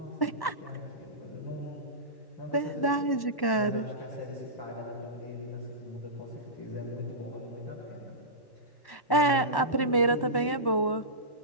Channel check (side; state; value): right; late; 1.1 ms